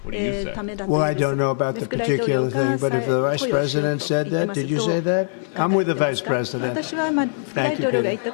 What do you say? Well, I don't know about the particular thing, but if the vice president said that, did you say that? I'm with the vice president. Thank you, Peter.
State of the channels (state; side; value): silent; right; digital silence